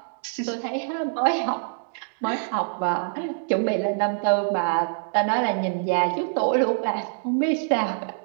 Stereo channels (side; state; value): left; silent; digital silence